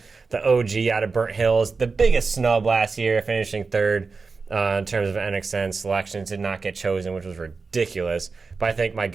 the OG out of Burnt Hills, the biggest snub last year, finishing 3rd. In terms of NXN selections, did not get chosen, which was ridiculous. But I think my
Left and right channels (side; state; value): left; quieter; 4.4 dB